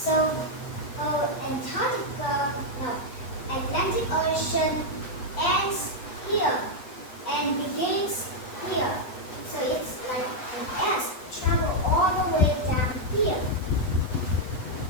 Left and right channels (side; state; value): right; late; 8.1 ms